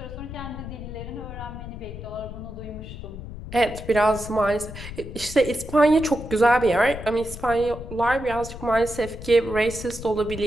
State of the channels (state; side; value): noise; left; rumble, 11 dB below the sound